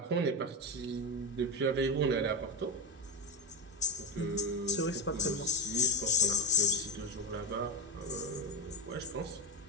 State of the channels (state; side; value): normal; both; correlation 0.07